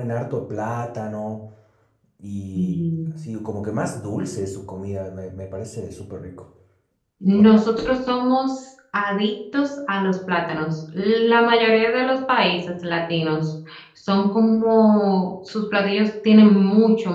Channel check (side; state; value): both; identical; correlation 1.00